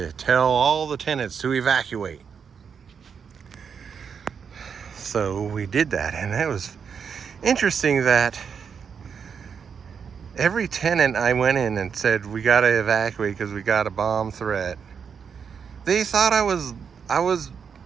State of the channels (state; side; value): quieter; left; 6.7 dB